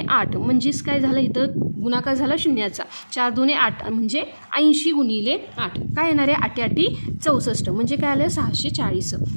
8 म्हणजेच काय झालं इथं गुणाकार झाला शून्याचा. 4 दुने 8 म्हणजे 80 गुणिले 8 काय येणार आहे 8 8 64 म्हणजे काय आलं 640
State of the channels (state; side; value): inverted; both; correlation -1.00